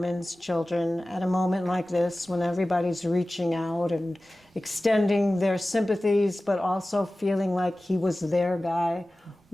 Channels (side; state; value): both; normal; correlation 0.97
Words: children at a moment like this when everybody's reaching out and extending their sympathies but also feeling like he was their guy?